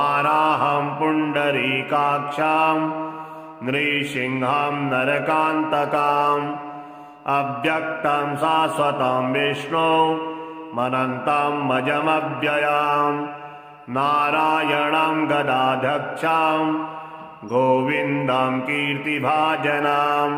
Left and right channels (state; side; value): identical; both; correlation 1.00